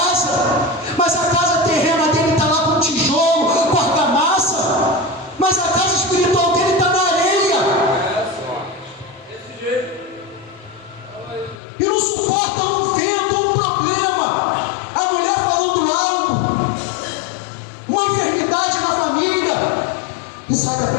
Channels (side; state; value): right; drops out; at 11.6 s